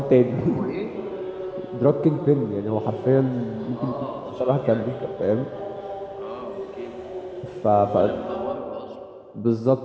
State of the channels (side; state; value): both; identical; correlation 1.00